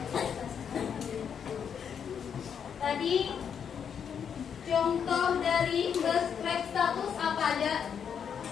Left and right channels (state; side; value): quieter; right; 7.6 dB